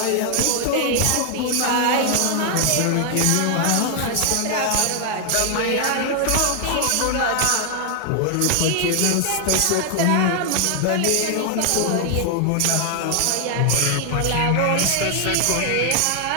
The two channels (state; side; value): different; both; correlation 0.00